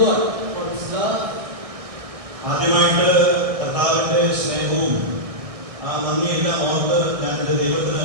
God for His love. ആദ്യമായിട്ട് കർത്താവിൻ്റെ സ്നേഹവും ആ നന്ദിയെല്ലാം ഓർത്ത് ഞാൻ എൻ്റെ ദൈവത്തിന്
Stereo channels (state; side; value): late; left; 1.6 ms